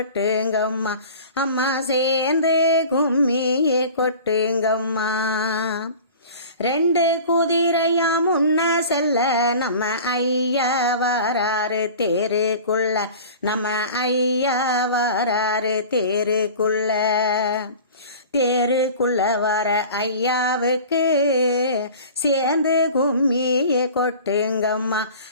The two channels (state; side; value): inverted; both; correlation -0.40